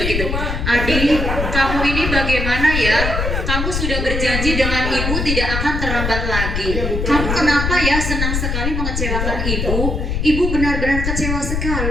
Adi, kamu ini bagaimana ya? Kamu sudah berjanji dengan ibu tidak akan terlambat lagi. Kamu kenapa ya senang sekali mengecewakan ibu? Ibu benar-benar kecewa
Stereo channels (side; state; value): left; noise; rumble, 1 dB below the sound